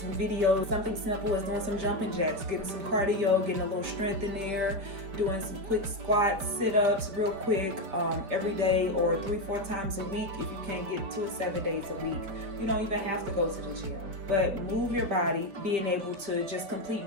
videos, something simple as doing some jumping jacks, getting some cardio, getting a little strength in there, doing some quick squats, sit-ups real quick every day, or 3-4 times a week. If you can't get to it 7 days a week, you don't even have to go to the gym, but move your body, being able to just complete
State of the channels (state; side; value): late; left; 4.9 ms